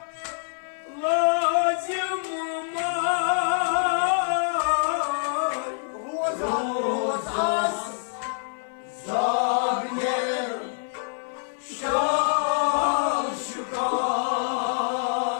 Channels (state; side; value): silent; right; 59 dB below the other